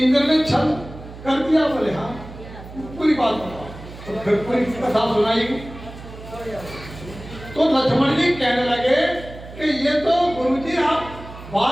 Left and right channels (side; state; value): right; noise; hum, 15 dB below the sound